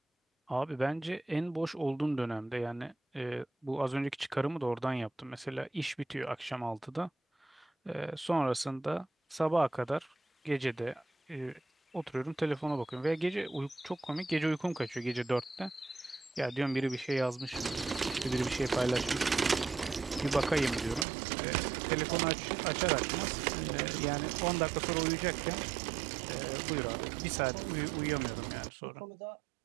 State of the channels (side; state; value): left; drops out; at 21.1 s